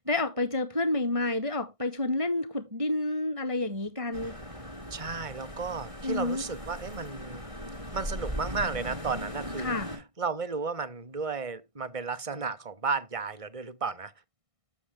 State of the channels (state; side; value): late; left; 1.6 ms